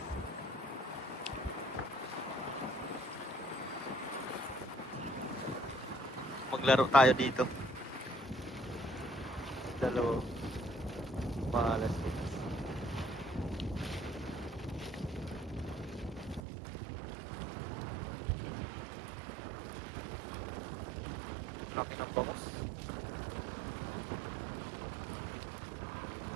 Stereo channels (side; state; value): left; drops out; at 16.4 s